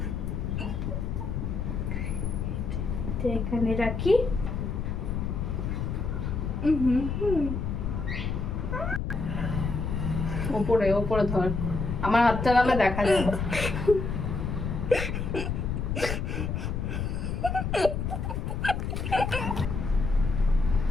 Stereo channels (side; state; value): left; noise; rumble, 2 dB below the sound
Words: এখানে রাখি। ওপরে ওপরে ধর, আমার হাতটা নালে দেখা যায়।